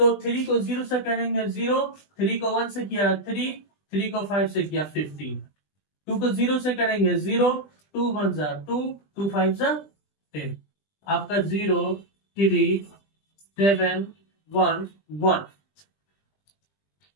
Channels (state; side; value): late; right; 20 ms